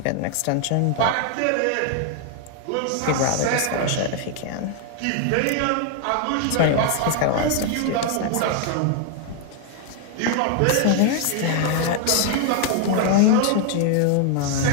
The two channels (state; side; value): different; both; correlation 0.00